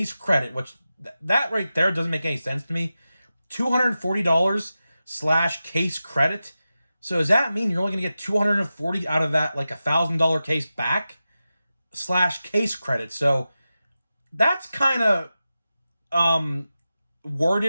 credit, which that right there doesn't make any sense to me. $240/case credit. So does that mean you're only going to get $240 out of that, like $1,000 case back / case credit? So that's kind of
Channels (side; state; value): both; inverted; correlation -0.93